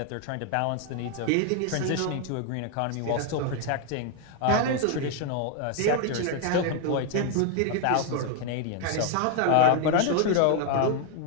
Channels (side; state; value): both; different; correlation 0.00